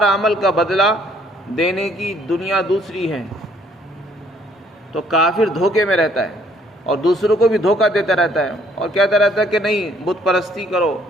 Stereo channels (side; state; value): both; normal; correlation 0.63